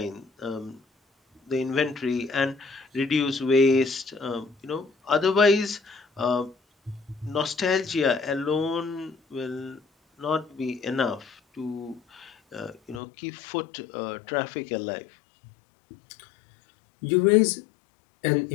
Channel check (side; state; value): right; drops out; at 13.0 s